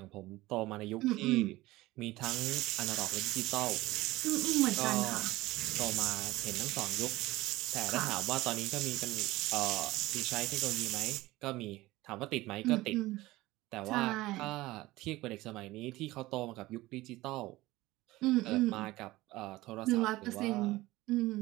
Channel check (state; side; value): quieter; left; 18.6 dB